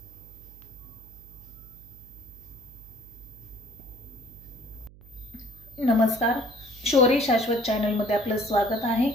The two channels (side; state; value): right; noise; hum, 21 dB below the sound